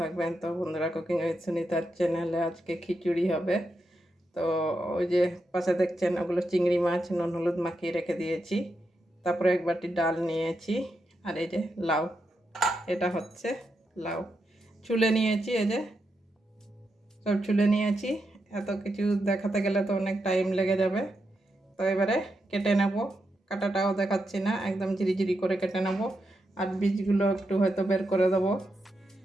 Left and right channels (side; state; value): both; normal; correlation 0.85